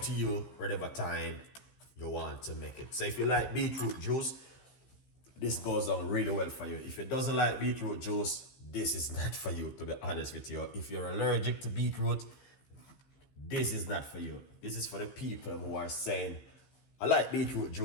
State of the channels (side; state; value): right; late; 15 ms